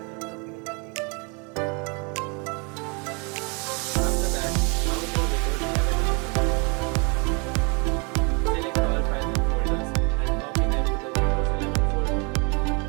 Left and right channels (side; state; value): left; quieter; 32.4 dB